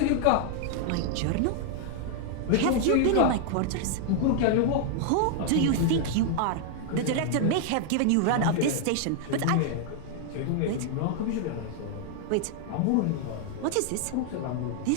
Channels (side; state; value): both; different; correlation 0.00